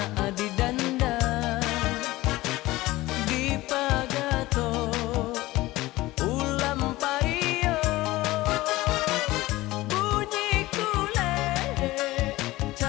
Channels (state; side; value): quieter; right; 18.6 dB